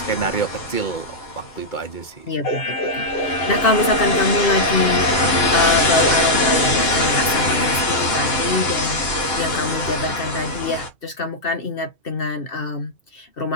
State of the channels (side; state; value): right; late; 2.7 ms